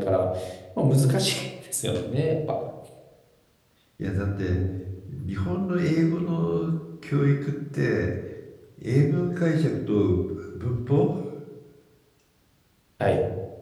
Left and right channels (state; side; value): identical; both; correlation 1.00